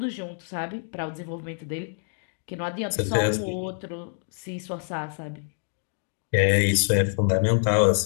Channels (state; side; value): silent; right; digital silence